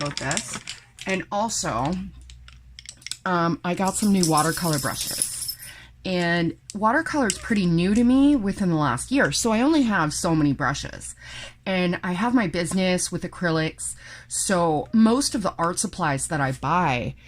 this. And also, I got some new watercolor brushes. And watercolor is pretty new to me within the last year, so I only have so many brushes. And I have my business with acrylics, so most of the art supplies that I buy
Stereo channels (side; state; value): both; identical; correlation 1.00